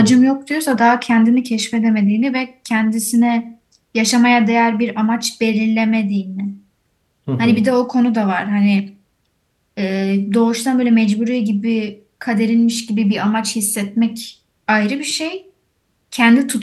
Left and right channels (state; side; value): identical; both; correlation 1.00